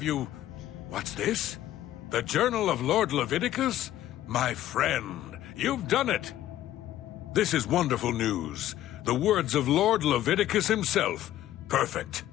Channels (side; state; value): right; quieter; 13.2 dB